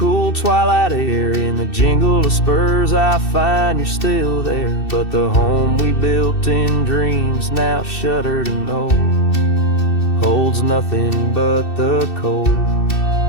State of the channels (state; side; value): late; right; 2.7 ms